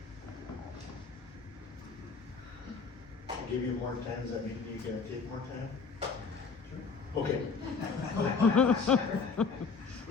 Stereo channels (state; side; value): quieter; right; 4.9 dB